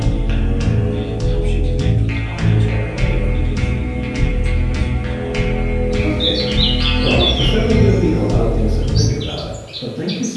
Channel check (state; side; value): identical; both; correlation 1.00